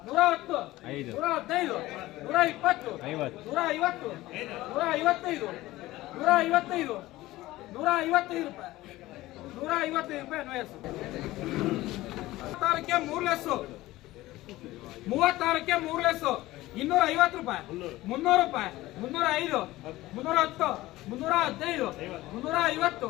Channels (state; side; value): quieter; right; 17.5 dB